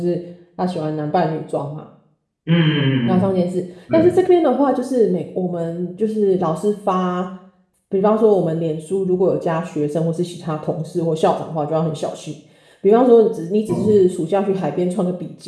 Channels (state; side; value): identical; both; correlation 1.00